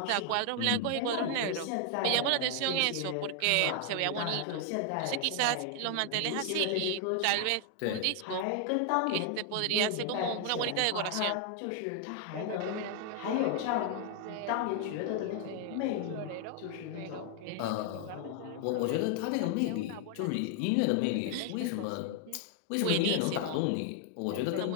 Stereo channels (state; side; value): different; both; correlation 0.00